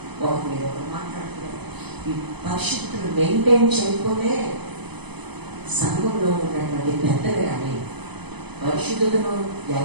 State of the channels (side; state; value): left; late; 0.99 ms